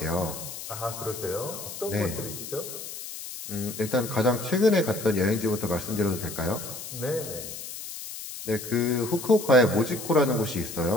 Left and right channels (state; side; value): noise; left; hiss, 10 dB below the sound